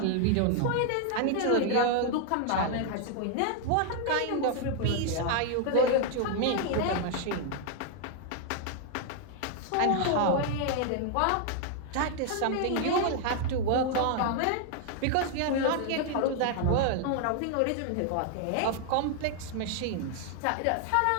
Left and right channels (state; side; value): different; both; correlation 0.00